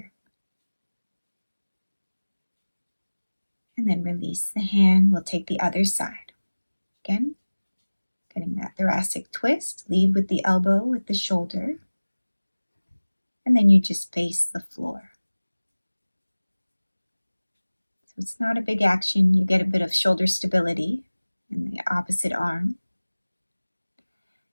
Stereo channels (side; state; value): both; inverted; correlation -1.00